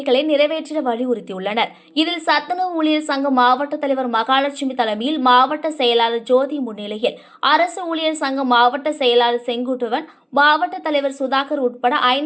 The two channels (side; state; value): both; identical; correlation 1.00